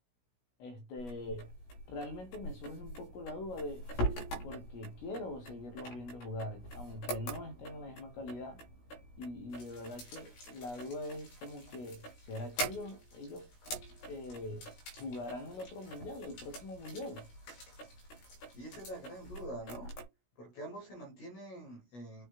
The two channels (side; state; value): right; late; 16 ms